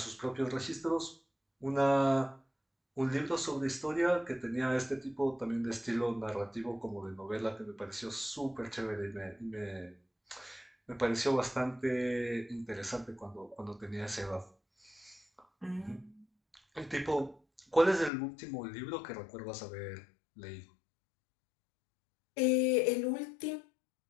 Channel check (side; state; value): right; drops out; at 18.1 s